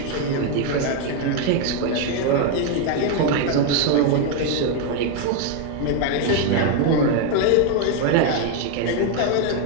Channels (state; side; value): different; both; correlation 0.01